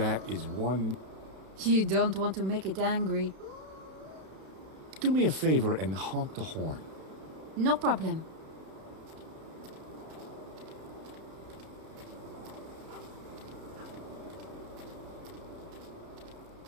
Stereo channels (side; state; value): left; late; 32 ms